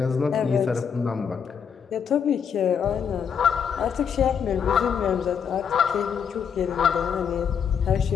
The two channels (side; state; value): right; quieter; 7.3 dB